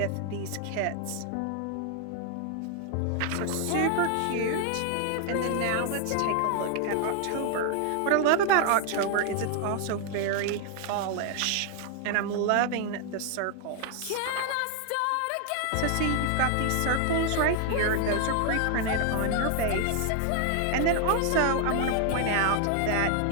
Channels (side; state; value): both; different; correlation 0.00